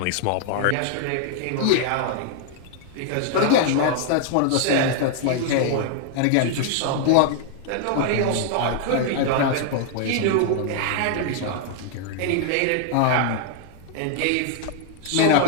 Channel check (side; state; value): both; different; correlation 0.00